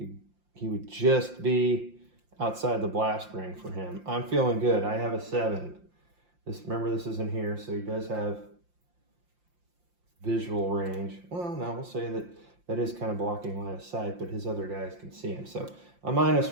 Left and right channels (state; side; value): late; left; 5.7 ms